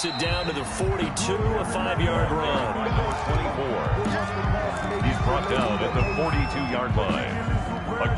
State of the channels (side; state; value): both; identical; correlation 1.00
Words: it down to the 42, a 5-yard run. 24. He's brought down at the 42-yard line. A